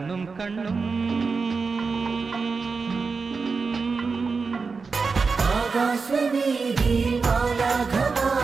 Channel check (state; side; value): quieter; left; 4.7 dB